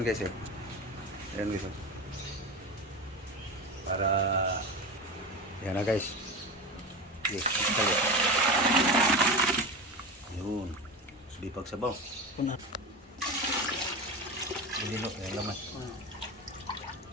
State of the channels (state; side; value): normal; both; correlation 0.25